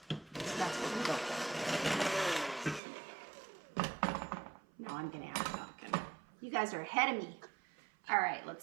So that's what we go for. Now I'm going to add pumpkin. You guys are ahead of me. All right,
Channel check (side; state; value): left; drops out; at 2.8 s